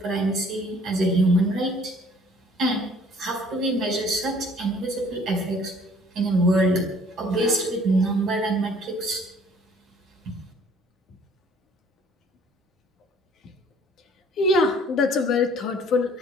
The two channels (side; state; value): both; normal; correlation 0.56